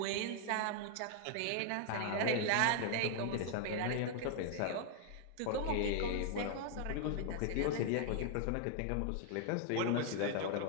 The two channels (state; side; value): different; both; correlation 0.00